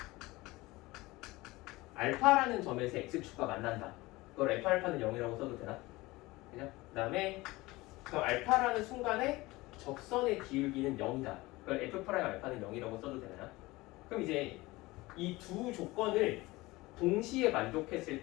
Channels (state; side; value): quieter; right; 20.7 dB